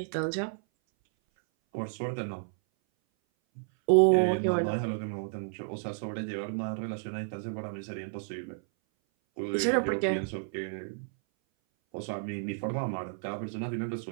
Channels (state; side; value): silent; left; 57 dB below the other